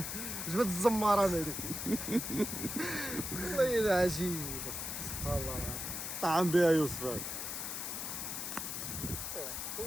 جبت الزمارة هذيك والله إلا عجيب سبحان الله طعم بها يوسف هذا.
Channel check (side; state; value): left; noise; hiss, 4 dB below the sound